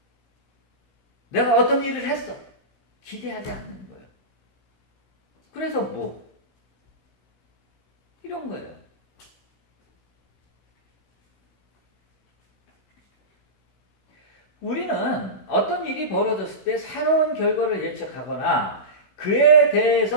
내가 어떤 일을 했어. 기대하지 않는 거예요. 그래서 이런 거예요. 우리는 어떤 일이 벌어졌을 때 새로운 결과를 예측하거나 그에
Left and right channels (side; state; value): right; late; 16 ms